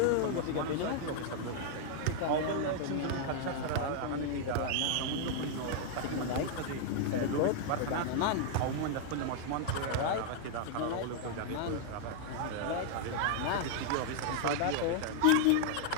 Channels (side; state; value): both; different; correlation 0.00